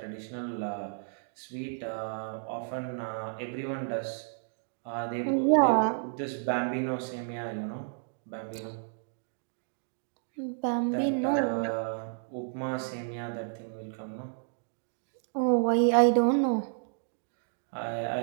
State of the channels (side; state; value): left; silent; digital silence